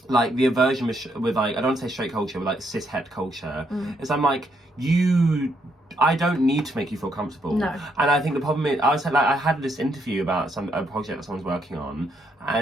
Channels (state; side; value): normal; both; correlation 0.75